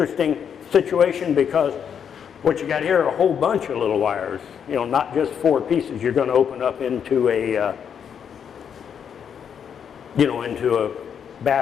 situation because what you got here are a whole bunch of little wires, you know, not just 4 pieces. You're going to open up into a, into a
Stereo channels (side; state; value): right; quieter; 7.8 dB